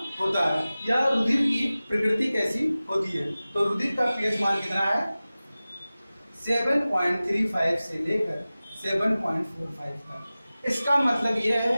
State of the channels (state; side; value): inverted; both; correlation -0.97